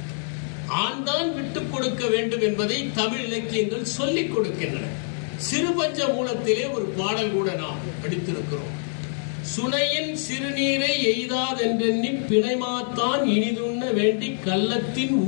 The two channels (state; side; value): silent; right; digital silence